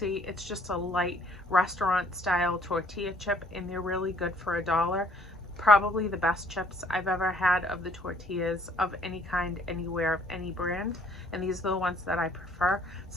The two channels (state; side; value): normal; both; correlation 0.61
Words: It's just a light restaurant style tortilla chip, and they're really good for $1. Probably the best chips I've ever had of the tortillas of any kind, anywhere, of any brand. And these are the ones that I prefer.